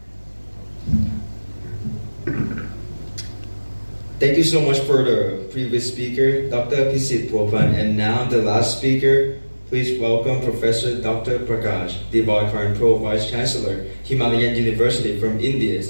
Thank you so much for the previous speaker, Dr. Pisit Popan, and now the last speaker. Please welcome Professor Dr. Prakash, Divakarn Pro Vice Chancellor, Himalayan University from India,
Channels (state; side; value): inverted; both; correlation -1.00